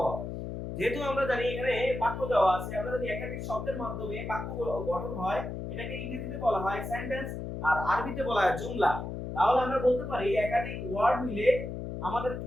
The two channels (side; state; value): left; noise; hum, 6 dB below the sound